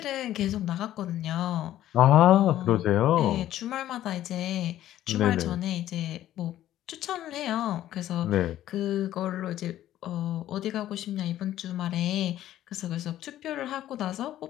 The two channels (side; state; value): right; quieter; 12.9 dB